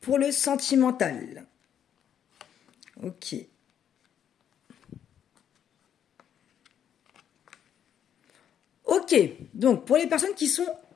le sentimental. Ok. Ok, donc pour les personnes qui sont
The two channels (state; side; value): quieter; right; 9.3 dB